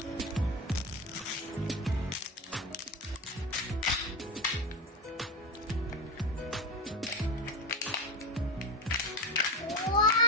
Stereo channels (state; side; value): normal; both; correlation 0.18